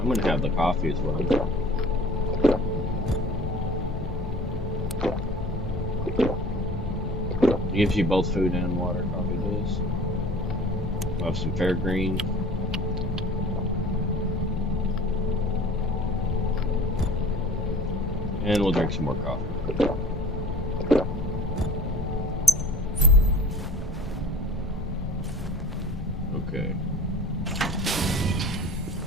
gonna have the coffee as well. It gives you both food and water, coffee does. We'll have some fair green. And we'll drink some more coffee. Okay.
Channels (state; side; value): normal; both; correlation 0.45